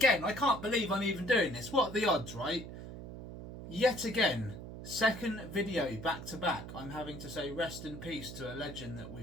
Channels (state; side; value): noise; right; hum, 11 dB below the sound